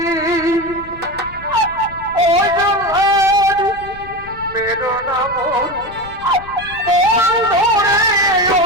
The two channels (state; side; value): noise; left; rumble, 18 dB below the sound